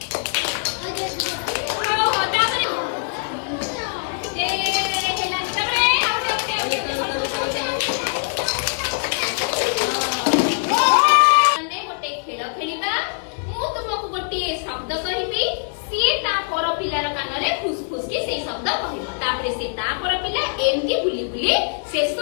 समझते शब्द कहबी सी ता पर पिलार कानरे फुसफुस की से शब्द कहबो तापरे से ता पर पिला एमती बुली बुली शेष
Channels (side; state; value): right; silent; 64 dB below the other